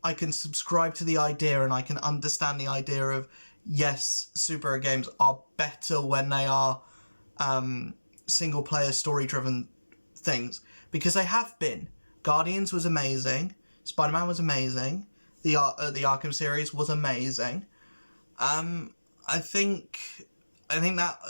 subscribe to the idea, and I can understand the idea of, yes, superhero games are better when they are single player story driven things, because they have been. Guardians was amazing, Spider-Man was amazing, the Arkham series was amazing. I think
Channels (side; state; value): both; inverted; correlation -1.00